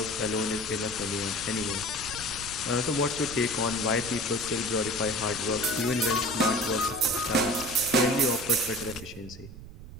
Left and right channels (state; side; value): noise; right; rumble, 14 dB below the sound